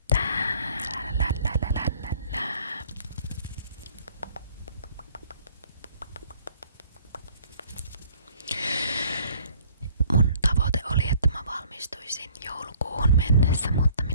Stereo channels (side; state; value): both; inverted; correlation -0.57